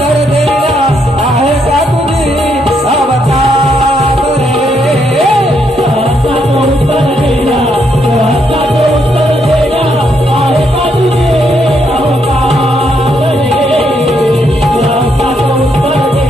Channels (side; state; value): both; normal; correlation 0.75